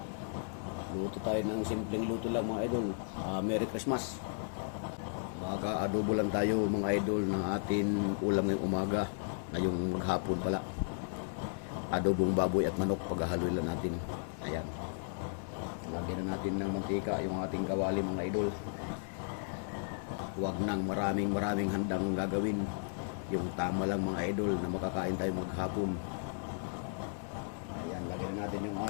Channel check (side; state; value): right; silent; digital silence